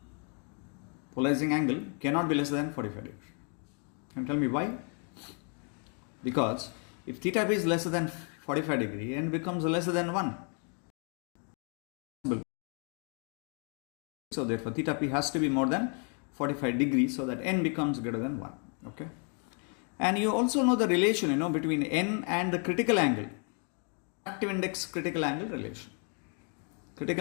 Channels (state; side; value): quieter; right; 40.0 dB